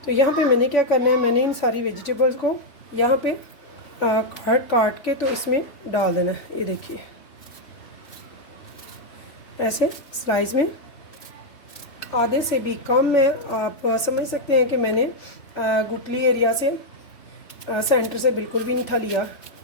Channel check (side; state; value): right; late; 3.1 ms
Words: तो यहाँ पे मैंने क्या करना है, मैंने इन सारी वेजिटेबल्स को यहाँ पे काट के तो इसमें डाल देना है। ये देखिए, ऐसे स्लाइस में आधे से भी कम में आप समझ सकते हैं कि मैंने गुटली एरिया से सेंटर से बिल्कुल भी नहीं था लिया।